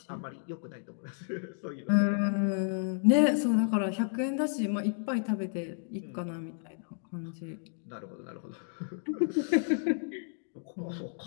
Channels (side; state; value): right; silent; digital silence